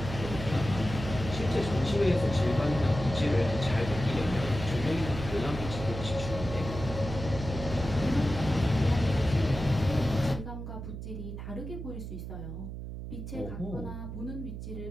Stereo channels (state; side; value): noise; right; hum, 8 dB below the sound